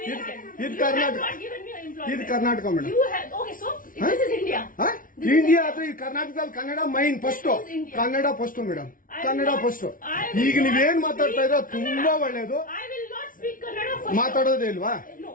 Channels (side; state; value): right; late; 0.39 ms